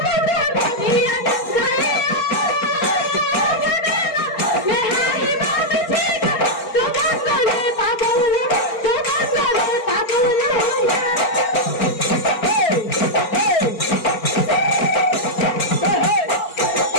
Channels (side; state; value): right; late; 4.4 ms